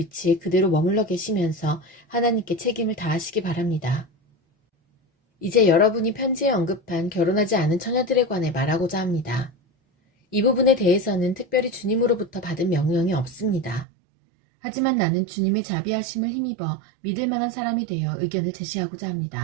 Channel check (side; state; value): left; drops out; at 13.9 s